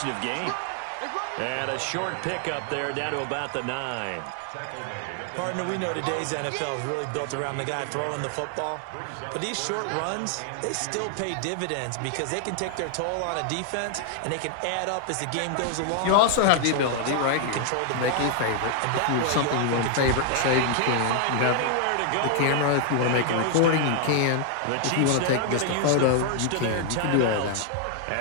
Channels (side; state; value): both; different; correlation 0.00